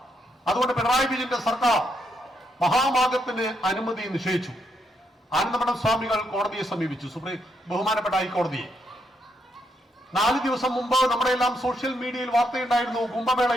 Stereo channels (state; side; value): normal; both; correlation 0.78